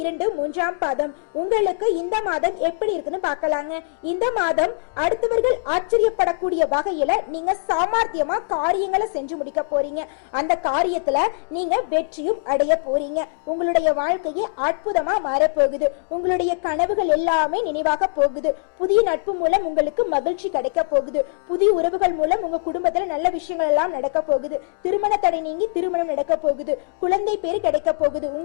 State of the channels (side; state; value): right; silent; digital silence